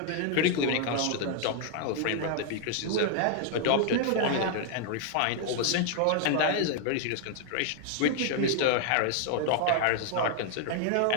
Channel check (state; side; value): different; both; correlation 0.00